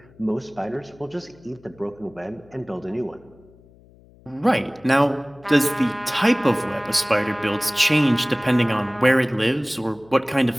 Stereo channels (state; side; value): noise; left; hum, 26 dB below the sound